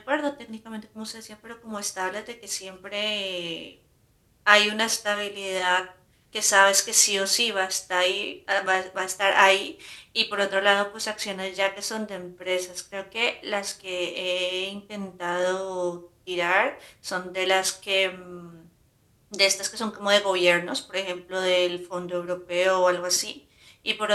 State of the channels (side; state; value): both; identical; correlation 1.00